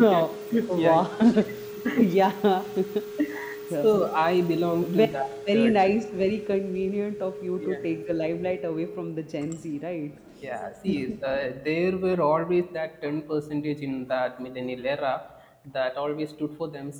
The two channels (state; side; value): identical; both; correlation 1.00